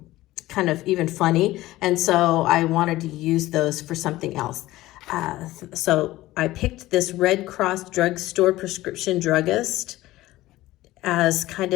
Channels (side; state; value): right; quieter; 17.0 dB